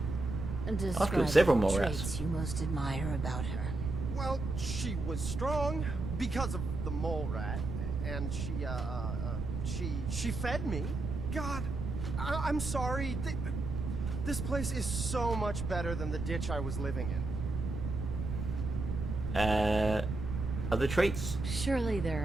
I've killed several mole rats. Traits you most admire about her. Well, she was strong because of the mole rat, and she fed me. God, I'm sorry. This place is so much better than the ditch I was living in. Other traits? Surely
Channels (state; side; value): noise; right; rumble, 4 dB below the sound